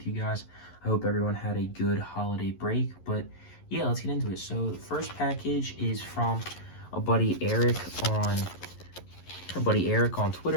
you guys. I hope everyone had a good holiday break, but yeah, let's get into it. So the first package is from a buddy Eric on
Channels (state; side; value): late; right; 11 ms